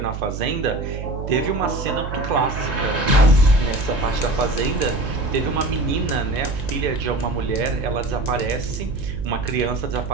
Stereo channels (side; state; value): right; noise; hum, 6 dB below the sound